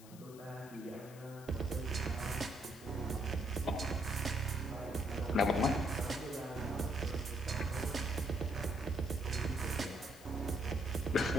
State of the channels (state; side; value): noise; left; hiss, 20 dB below the sound